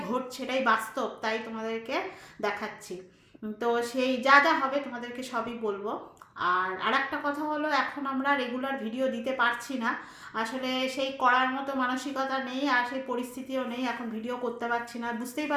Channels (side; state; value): both; identical; correlation 1.00